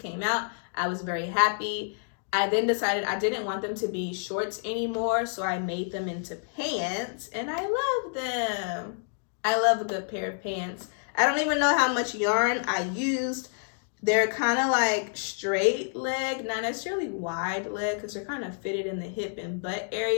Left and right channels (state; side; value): silent; right; digital silence